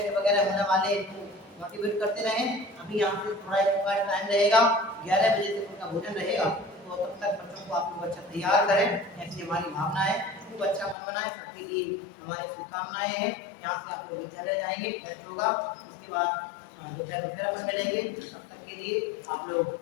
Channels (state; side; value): drops out; right; at 11.0 s